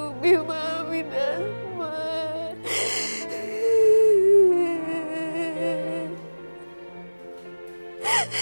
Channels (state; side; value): inverted; both; correlation -1.00